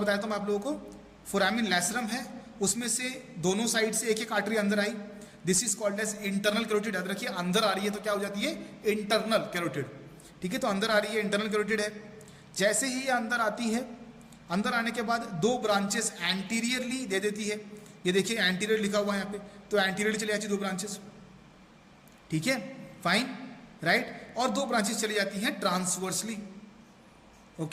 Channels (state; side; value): identical; both; correlation 1.00